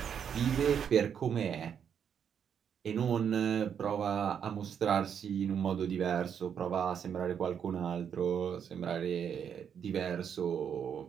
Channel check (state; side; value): quieter; left; 8.0 dB